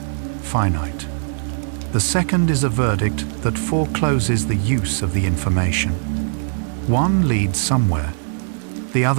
finite. The second is a verdict that forecloses the use of the information. One leads somewhere. The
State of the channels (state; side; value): silent; left; digital silence